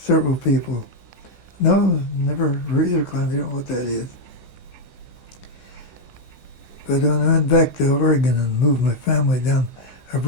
people, no, never razor clam, they don't know what that is. But when I went back to Oregon and moved my family down, I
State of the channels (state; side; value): late; right; 16 ms